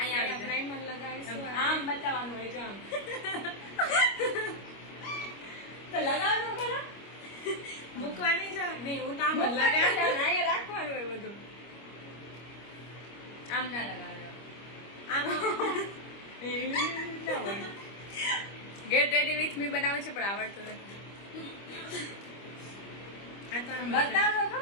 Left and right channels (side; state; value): right; late; 25 ms